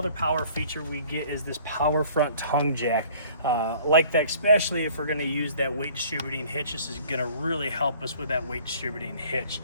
power feature we get is this power front tongue jack. Like that, especially if we're going to use that weight distributing hitch. This is going to really help us with that weight distributing hitch.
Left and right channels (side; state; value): both; inverted; correlation -0.52